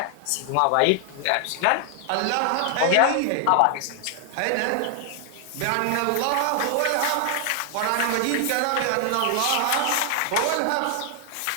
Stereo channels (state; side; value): different; both; correlation 0.00